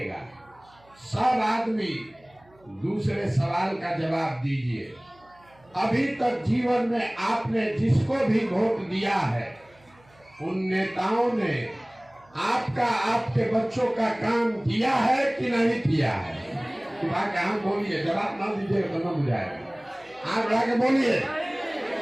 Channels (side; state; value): right; noise; hum, 30 dB below the sound